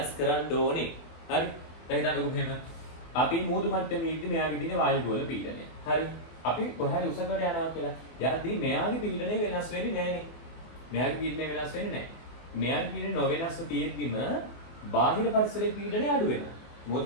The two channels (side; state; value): right; late; 24 ms